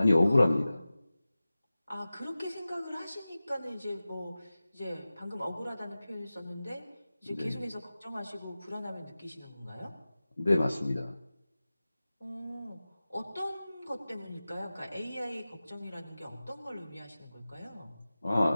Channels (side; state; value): both; inverted; correlation -0.96